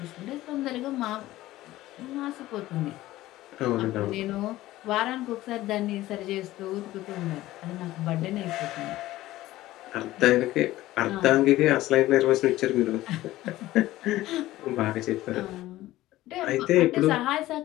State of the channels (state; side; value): quieter; right; 16.2 dB